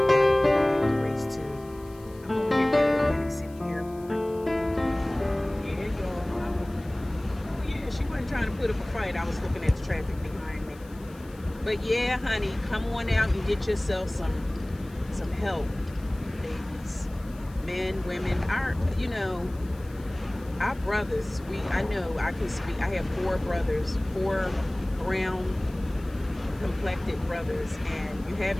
have to race to. I'm over here at Atlantic City Airport. Yeah, y'all. Oh yeah, she wasn't trying to put up a fight. I was looking at the traffic behind me. But yeah, honey, come on out and get yourself some help, babies, men, women. Our brothers. I know I can speak. I have 4 brothers, 4 brown complected brothers, and you have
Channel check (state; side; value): noise; left; hiss, 25 dB below the sound